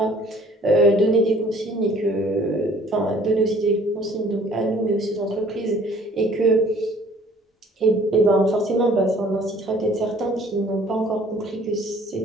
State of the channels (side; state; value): both; normal; correlation 0.55